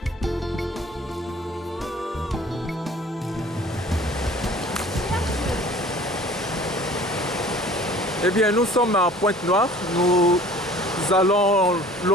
Eh bien, nous sommes à Pointe-Noire. Nous allons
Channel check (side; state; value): both; normal; correlation 0.49